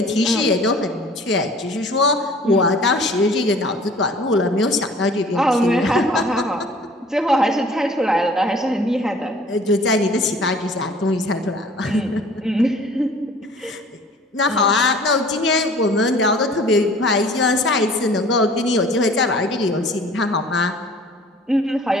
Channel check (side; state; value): both; normal; correlation 0.50